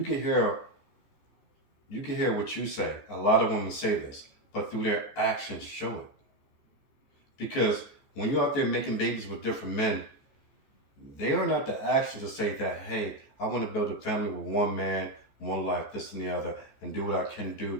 can hear what you say. A lot of women say this, but through their actions show it. Because when you're out there making babies with different men, they are not the actions to say that, hey, I want to build a family with one man, one life, this and the other, and do what I can do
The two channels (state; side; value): late; right; 14 ms